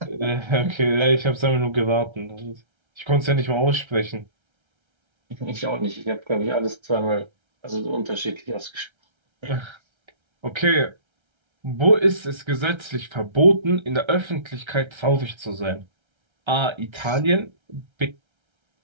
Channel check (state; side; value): late; left; 1.3 ms